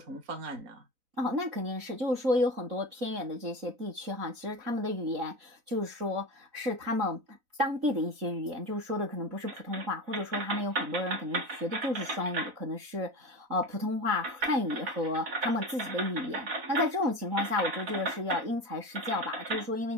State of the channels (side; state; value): left; late; 4.0 ms